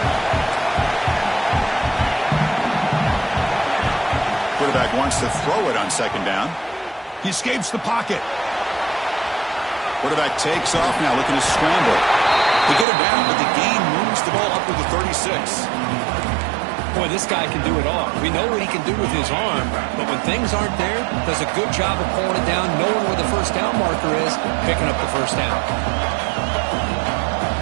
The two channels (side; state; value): left; drops out; at 12.9 s